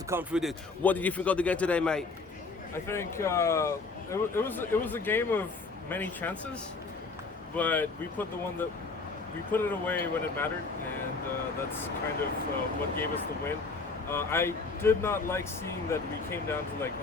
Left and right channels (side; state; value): right; quieter; 4.1 dB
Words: come through this. What did you think of the game today, mate? I think it was a game of many chances, but we put it away when it mattered, and that's kind of what gave us the win. I did not like seeing that we came down to like